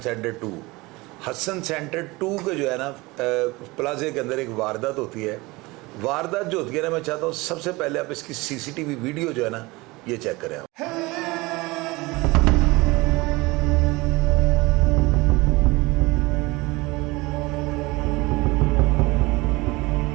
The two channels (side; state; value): left; quieter; 22.7 dB